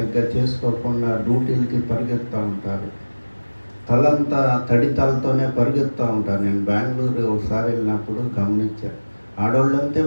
చేసుకోకుండా డ్యూటీలకి పరిగెత్తూ ఉంటారు. తలంతా తడి తలతోనే పరిగెత్తూ ఉంటారు. నేను బెంగళూరు ఒకసారి వెళ్ళినప్పుడు గమనించాను, ఆడవాళ్ళంతే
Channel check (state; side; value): inverted; both; correlation -1.00